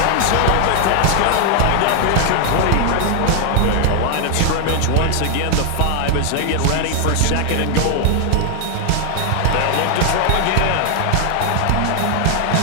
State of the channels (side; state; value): both; different; correlation 0.00